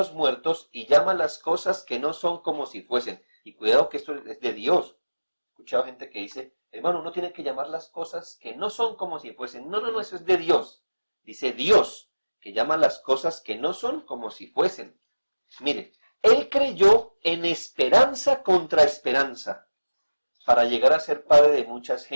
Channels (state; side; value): inverted; both; correlation -1.00